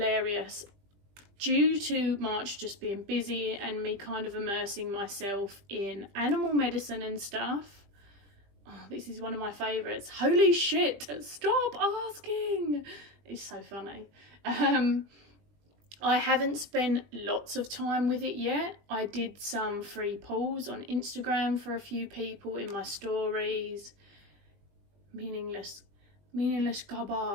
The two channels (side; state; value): left; late; 20 ms